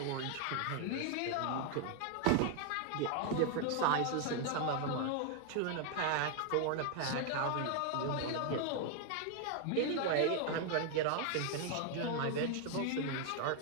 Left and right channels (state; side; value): different; both; correlation 0.01